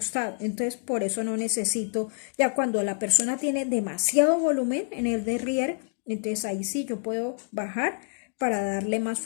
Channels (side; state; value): right; silent; 60 dB below the other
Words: Entonces por eso no necesito, ya cuando la persona tiene demasiado volumen en el derrière, entonces ahí sí yo puedo bajar para darle más